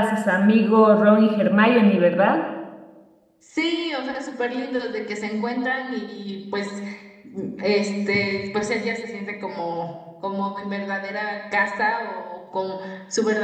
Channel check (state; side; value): identical; both; correlation 1.00